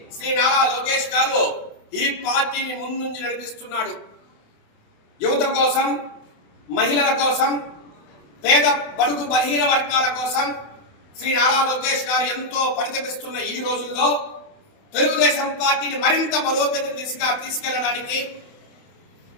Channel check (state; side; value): late; right; 28 ms